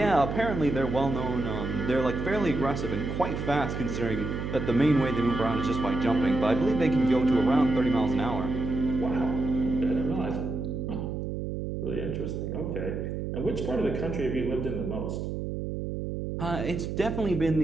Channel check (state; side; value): noise; right; hum, 4 dB below the sound